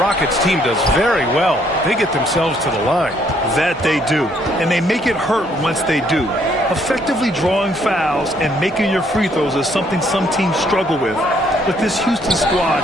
team does very well, they get themselves to the line. That they do, and they make it hurt once they do. Effectively drawing fouls and making your free throws is something some teams struggle with, but this Houston squad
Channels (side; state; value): both; normal; correlation 0.67